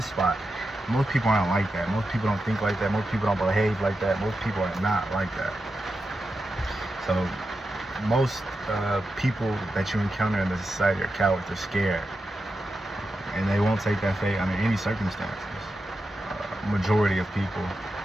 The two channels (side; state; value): both; normal; correlation 0.89